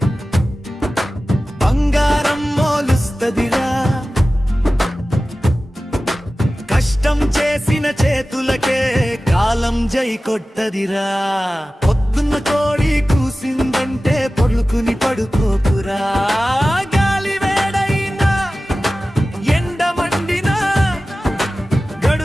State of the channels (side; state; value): both; normal; correlation 0.96